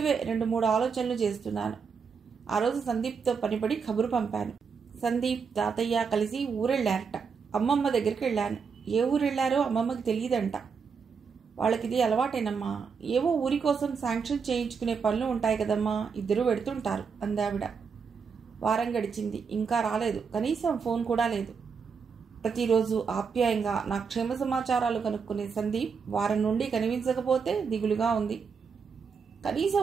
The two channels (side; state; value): left; quieter; 5.8 dB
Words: 2-3 ఆలోచనలు చేస్తున్నాను. ఆ రోజు సందీప్తో పనిపడి కబురు పంపాను. సందీప్, తాతయ్య కలిసి ఊరెళ్ళారట. అమ్మమ్మ దగ్గరికి వెళ్ళాను. ఏ ఊరెళ్లారో అమ్మమ్మకి తెలియదంట. వాళ్ళకిది అలవాటేనమ్మా. ఏవో ఊరి కోసం శాంక్షన్ చేయించుకునే పనులు ఉంటాయి కదమ్మా, ఇద్దరూ పెడుతుంటారు అందావిడ. వారం గడిచింది. ఇంకా రాలేదు. కనీసం ఫోన్ కూడా లేదు. ప్రతిరోజు ఆప్యాయంగా నా క్షేమ సమాచారాలు కనుక్కునే సందీప్ వారం నుండి కనిపించకపోతే దిగులుగా ఉంది.